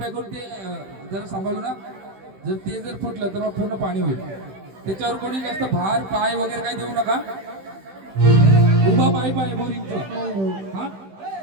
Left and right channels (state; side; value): late; left; 16 ms